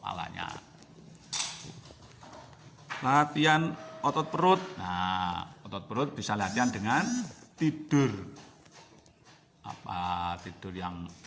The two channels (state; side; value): identical; both; correlation 1.00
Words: Latihan otot perut. Nah, otot perut bisa latihan dengan tidur. Tidur yang